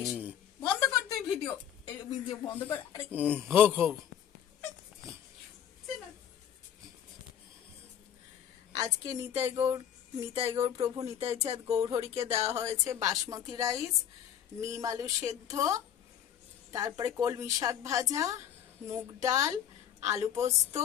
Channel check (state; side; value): quieter; right; 9.6 dB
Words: বন্ধ কর তুই ভিডিও, ভিডিও বন্ধ কর। আরে হোক হোক। আজকে নিতাই গৌর প্রভু নিতাই চাঁদ গৌরহরিকে দেওয়া হয়েছে বাসমতি রাইস, নিম আলু সেদ্ধ, তারপরে কলমি শাক ভাজা, মুগ ডাল, আলু পোস্ত,